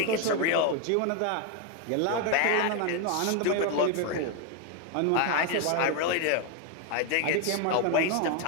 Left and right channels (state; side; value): different; both; correlation 0.01